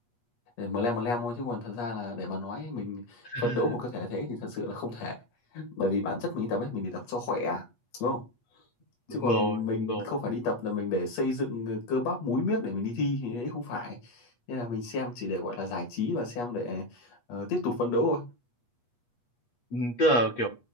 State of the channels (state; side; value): late; right; 8.4 ms